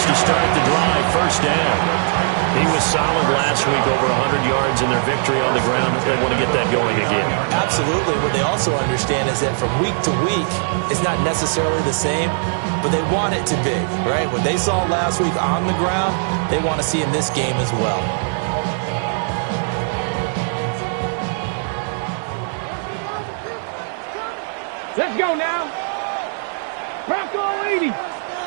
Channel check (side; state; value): left; silent; 66 dB below the other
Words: to start the drive. 1st down. He was solid last week, over 100 yards in their victory on the ground. They want to get that going again. Absolutely. What they also understand is that from week to week, it's not necessarily the same, but they want it to be, right? What they saw last week on the ground, they want to see in this game as well. Let's go now. Bronco 80.